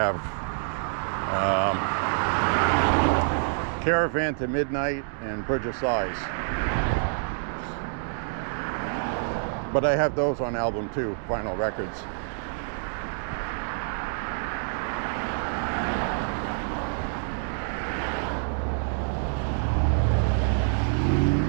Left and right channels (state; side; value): silent; left; digital silence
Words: Caravan to Midnight and Bridge of Sighs. But I have those on album too, vinyl records.